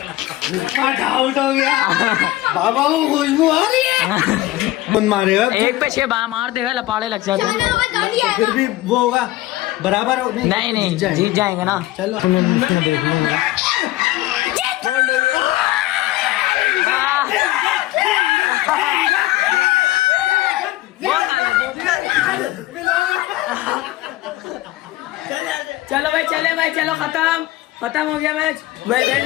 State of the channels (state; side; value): quieter; right; 16.8 dB